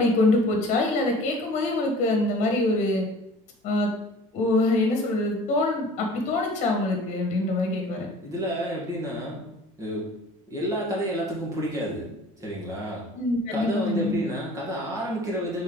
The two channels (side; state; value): both; normal; correlation 0.46